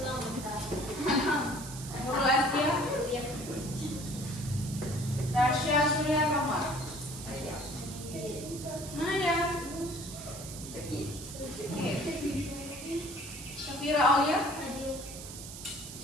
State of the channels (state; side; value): noise; right; hiss, 11 dB below the sound